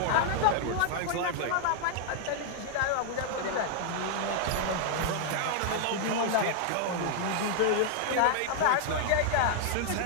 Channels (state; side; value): different; both; correlation 0.00